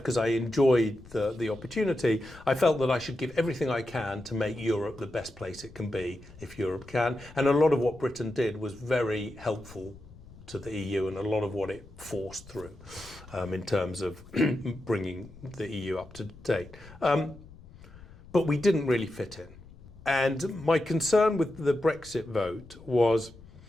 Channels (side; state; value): left; noise; rumble, 20 dB below the sound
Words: I enjoyed the opportunity, I felt that I should give everything I can to make Europe the best place it can be, if Europe can. And a lot of what Britain did was very helpful to the EU, and a lot of what it forced through in terms of bringing the EU up to date. But we didn't really fit in. And my concern with the Brexit vote was,